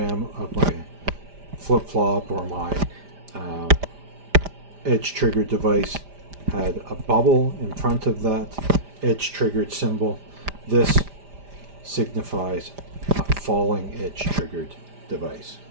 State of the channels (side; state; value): left; late; 5.0 ms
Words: of my flip-flop or my edge triggered device had a bubble in front of that edge triggered symbol, this signifies a falling edge triggered device.